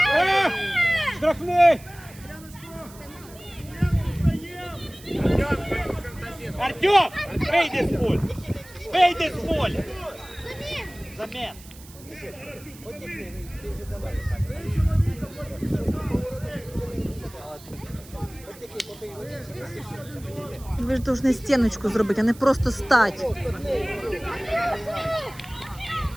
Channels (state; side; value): noise; right; hiss, 20 dB below the sound